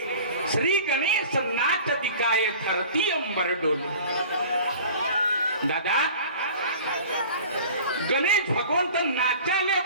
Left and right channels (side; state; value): both; inverted; correlation -0.43